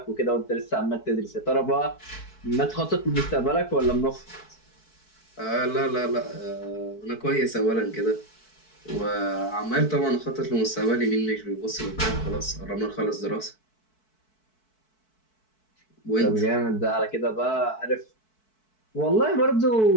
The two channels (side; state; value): right; late; 4.6 ms